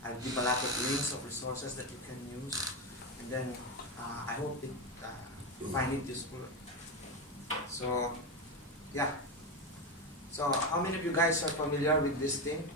I'll give a lot of links of resources that you can use, and then I hope you find it useful. So yeah. So how many of you guys are familiar with this thing?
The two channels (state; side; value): normal; both; correlation 0.13